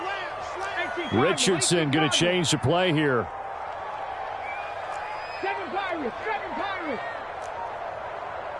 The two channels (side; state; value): both; identical; correlation 1.00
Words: Richardson going to change the play here.